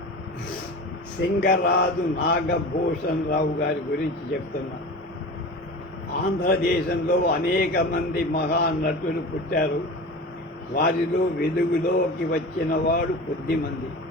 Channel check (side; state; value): both; normal; correlation 0.33